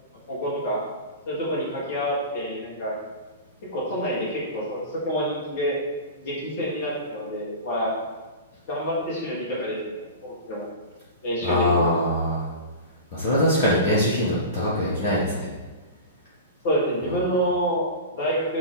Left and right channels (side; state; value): both; inverted; correlation -0.30